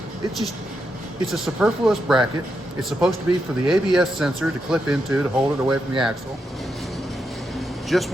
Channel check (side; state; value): both; normal; correlation 0.84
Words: It's a superfluous bracket. It's supposed to be for the ABS sensor to clip into to hold it away from the axle. Just